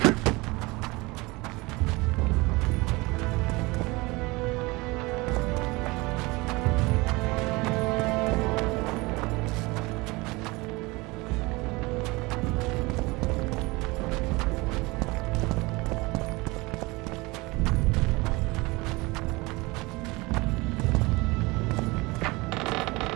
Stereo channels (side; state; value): left; quieter; 23.5 dB